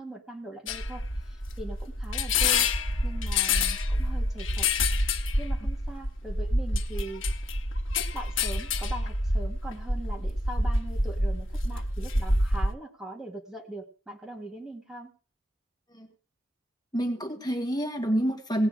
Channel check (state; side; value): normal; both; correlation 0.71